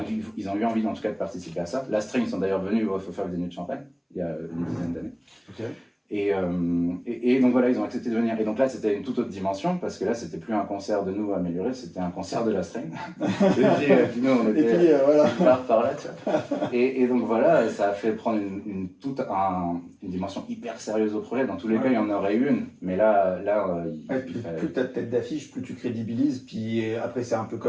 ont eu envie, en tout cas, de participer à ça. La Strain, ils sont d'ailleurs venus au Festival des nuits de champagne, il y a une dizaine d'années. Okay. Et donc voilà, ils ont accepté de venir. Et donc là, c'était une toute autre dimension, parce que là, c'était plus un concert de nous améliorés, c'était un concert de la String. Puis nous, on était voilà. par là, tu vois. Et donc voilà, ça a fait prendre une dimension hyper sérieuse au projet. Dans tous les cas, il y en aurait une, mais là plus tu as de tête d'affiche, plus tu crédibilises. Puis après, c'est un peu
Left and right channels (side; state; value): both; identical; correlation 1.00